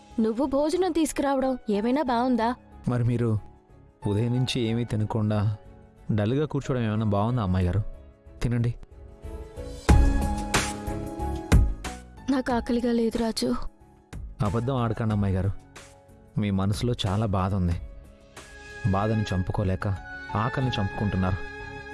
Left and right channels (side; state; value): both; identical; correlation 1.00